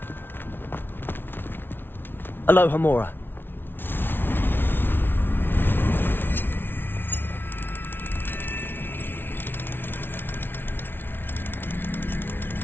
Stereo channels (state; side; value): late; right; 0.10 ms